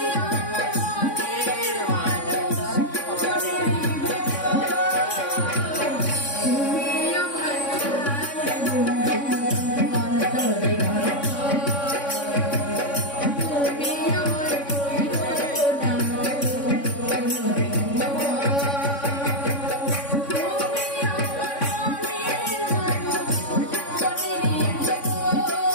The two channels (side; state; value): right; late; 3.6 ms